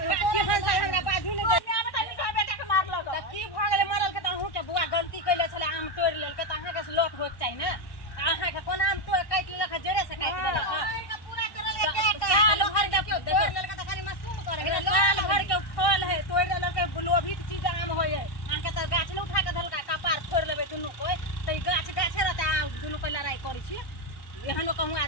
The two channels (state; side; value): late; right; 1.1 ms